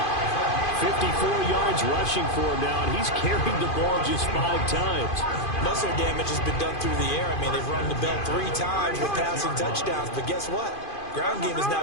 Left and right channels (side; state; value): right; late; 2.5 ms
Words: 54 yards rushing for him now, and he's carried the ball just 5 times. Muscle damage has been done through the air. I mean, they've rung the bell 3 times with passing touchdowns, but guess what? Ground game has